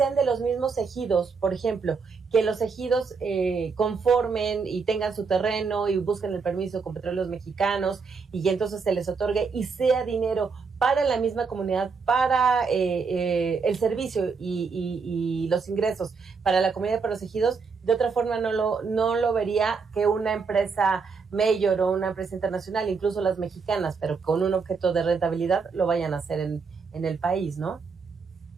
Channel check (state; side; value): quieter; left; 5.1 dB